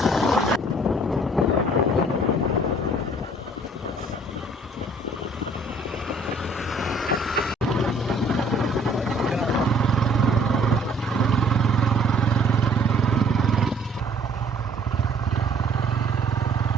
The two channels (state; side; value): normal; both; correlation 0.57